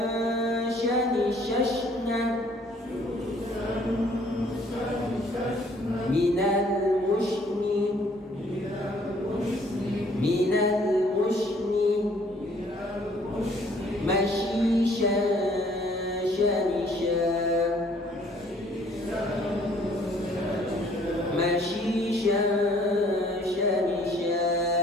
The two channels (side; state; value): both; normal; correlation 0.60